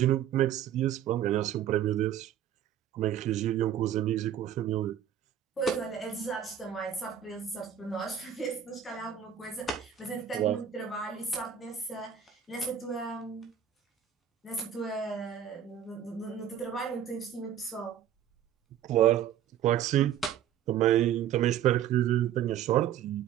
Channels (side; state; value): left; quieter; 9.7 dB